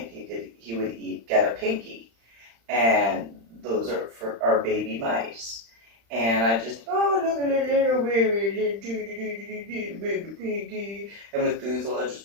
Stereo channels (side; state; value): left; late; 35 ms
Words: he would get a pinky, and those are for our baby mice. And I just, oh, look at the little baby, baby pinky. And Methuselah